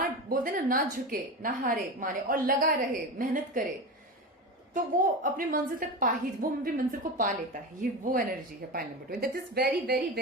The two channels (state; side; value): normal; both; correlation 0.23